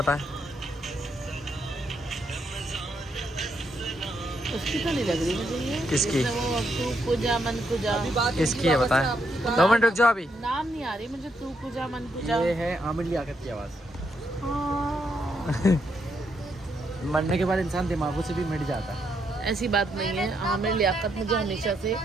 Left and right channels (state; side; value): normal; both; correlation 0.78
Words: उसकी तो नहीं लग रही मुझे ये। किसकी? तू कुजा मन कुजा। किसकी है बताएं? 2 मिनट रुक जाओ, अभी नाम नहीं आ रही मुझे। तू कुजा मन कुजा। ये है आमिर लियाकत की आवाज़। हाँ। मरने के बाद इंसान दिमागों से भी मिट जाता है। ऐसी बात नहीं है, आमिर लियाकत मुझे हमेशा से।